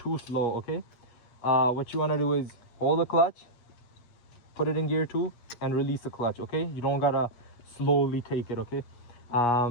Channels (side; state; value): right; late; 8.4 ms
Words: slow, okay? What you want to do is hold the clutch, put it in gear 2, and release the clutch, okay? You don't gotta slowly take it, okay?